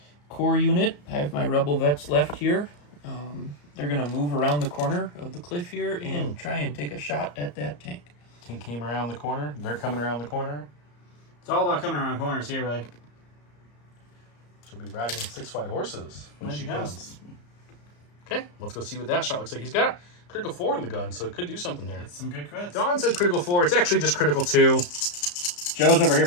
Core unit, I have my rebel vets left here. They're going to move around the corner of the cliff here and try and take a shot at that tank. Tank came around the corner. They're coming around the corner. It's all about coming around corners here, really. She'll be riding 6 white horses when When she she comes. comes. Okay, let's go see what that shot looks like. He's got critical 4 in the gun, so it could do something there. Some good crits. Don said critical 4. It's actually just critical 2. Joe's over here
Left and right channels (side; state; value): right; late; 34 ms